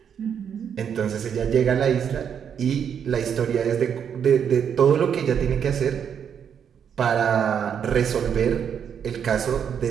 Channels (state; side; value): quieter; left; 7.9 dB